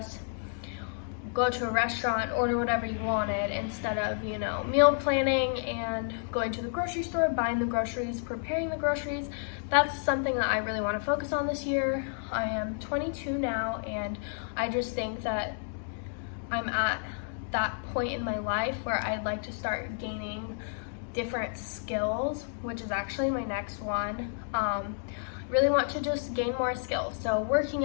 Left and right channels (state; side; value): silent; right; digital silence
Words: go to a restaurant, order whatever you wanted, instead of, meal planning and going to the grocery store, buying the groceries, preparing the groceries. That's something that I really want to focus on this year. I am 22 now, and I just think that I'm at that point in my life where I'd like to start gaining different skills, which is actually my next one. Really want to just gain more skills. So